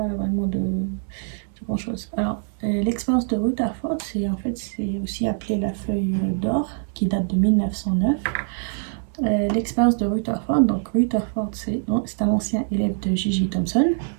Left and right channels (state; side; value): silent; left; 63 dB below the other